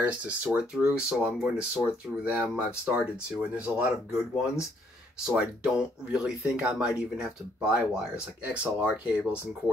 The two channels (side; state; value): both; normal; correlation 0.68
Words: to sort through, so I'm going to sort through them. I've started to, and there's a lot of good ones, so I don't really think I might even have to buy wires, like XLR cables and